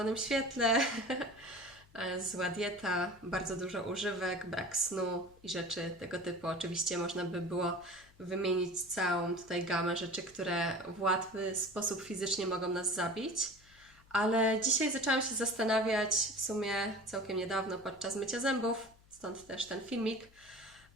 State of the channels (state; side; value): noise; left; hum, 27 dB below the sound